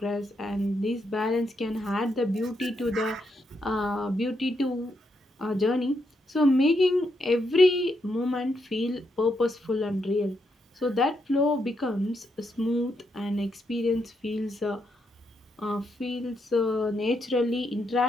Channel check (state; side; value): normal; both; correlation 0.80